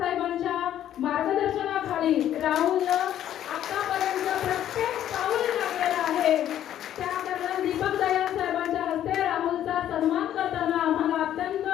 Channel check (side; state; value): right; quieter; 11.3 dB